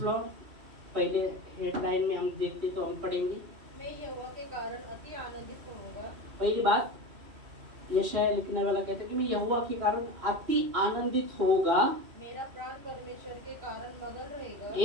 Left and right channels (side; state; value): left; late; 2.6 ms